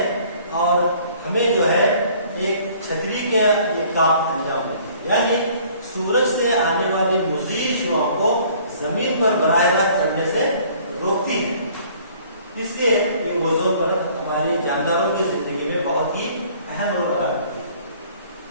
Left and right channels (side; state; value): both; inverted; correlation -0.55